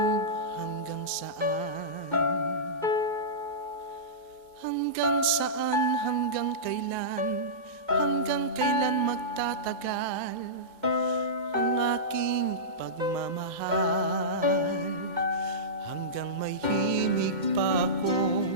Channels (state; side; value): normal; both; correlation -0.16